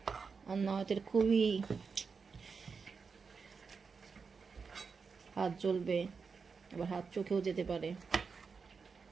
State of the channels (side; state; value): left; quieter; 5.3 dB